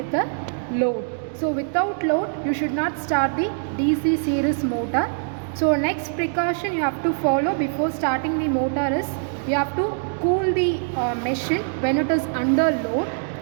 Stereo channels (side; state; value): left; silent; digital silence